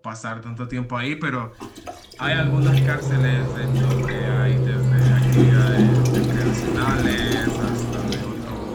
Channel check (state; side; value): identical; both; correlation 1.00